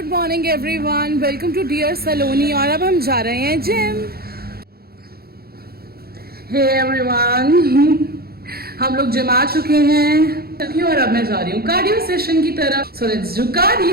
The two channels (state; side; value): late; left; 0.45 ms